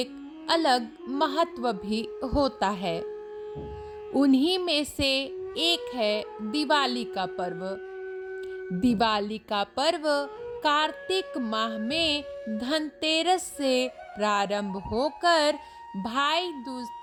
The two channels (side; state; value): both; identical; correlation 1.00